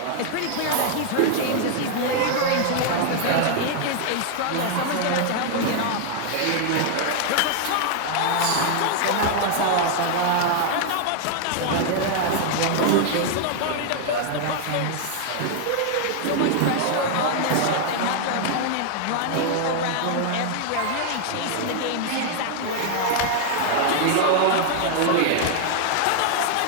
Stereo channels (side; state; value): both; different; correlation 0.00